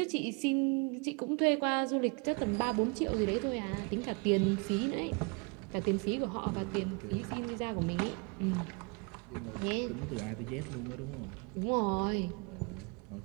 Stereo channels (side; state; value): left; quieter; 32.5 dB